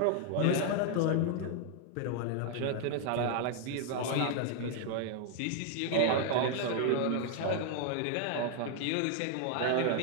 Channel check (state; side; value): different; both; correlation 0.00